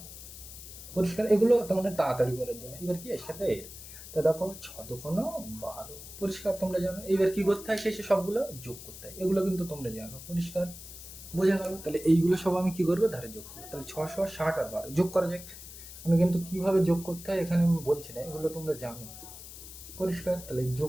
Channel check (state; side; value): noise; left; hiss, 14 dB below the sound